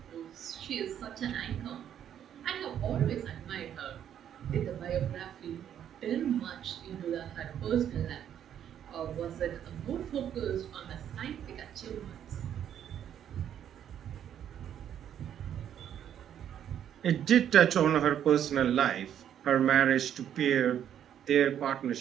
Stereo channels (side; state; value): left; quieter; 9.8 dB